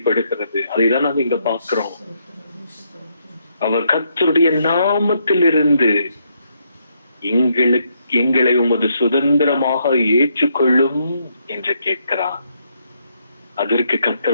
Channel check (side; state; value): both; inverted; correlation -0.75